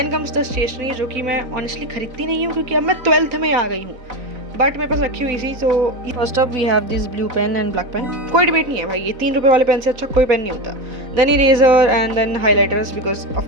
कम्स द स्टेशनरी, जो कि मैं ऑनेस्टली खरीदती नहीं हूँ क्योंकि अब मैं 12th में आ गई हूँ, बट मेरे पास रखी हुई थी। So first up we have this blue pen and black pen. कोई डिबेट नहीं है भाई, ये 3 रुपये वाले पेन से अच्छा कोई पेन नहीं होता। Then eraser and then highlighters, because of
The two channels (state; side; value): late; left; 4.0 ms